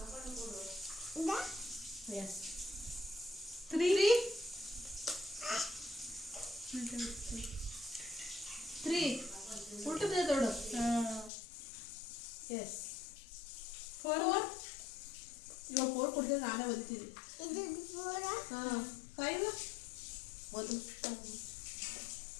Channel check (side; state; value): right; drops out; at 11.3 s